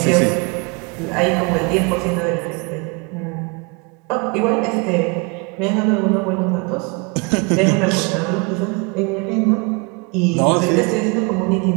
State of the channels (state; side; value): quieter; left; 30.6 dB